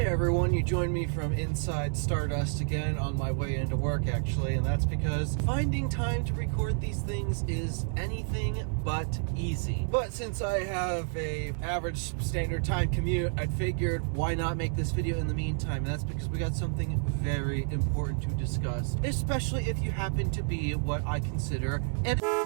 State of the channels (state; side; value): silent; left; 57 dB below the other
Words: everyone, you joined me from inside Stardust again on my way into work actually, and that's because finding time to record these things is anything but easy. But since I have a average standard time commute, I figured why not make this video in the meantime, and that's because we got something very important to discuss, especially if you happen to be what I consider an